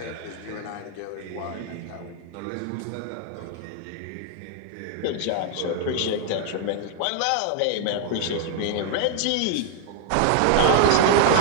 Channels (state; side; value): different; both; correlation 0.00